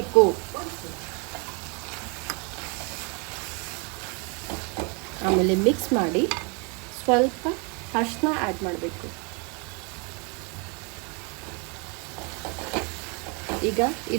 ಆಮೇಲೆ ಮಿಕ್ಸ್ ಮಾಡಿ ಸ್ವಲ್ಪ ಅರಿಶಿನ ಆ್ಯಡ್ ಮಾಡಬೇಕು. ಈಗ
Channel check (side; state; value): left; quieter; 33.8 dB